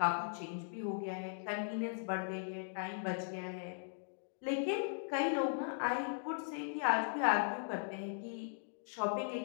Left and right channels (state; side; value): silent; right; digital silence